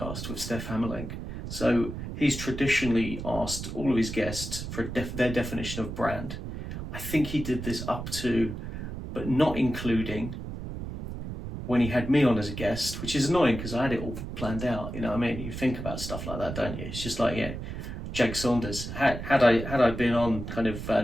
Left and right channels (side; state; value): right; noise; rumble, 7 dB below the sound